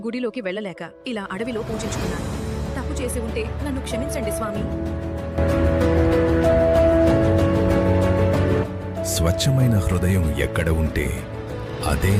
గుడిలోకి వెళ్ళలేక ఇలా అడవిలో పూజించుకున్నాను. తప్పు చేసి ఉంటే నన్ను క్షమించండి స్వామి. స్వచ్ఛమైన హృదయం ఎక్కడ ఉంటే అదే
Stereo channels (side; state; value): both; identical; correlation 1.00